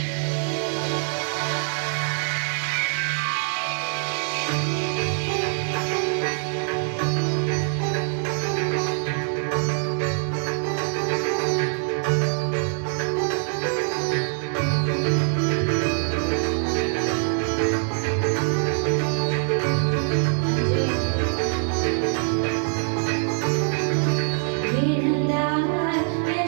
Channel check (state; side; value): silent; left; 63 dB below the other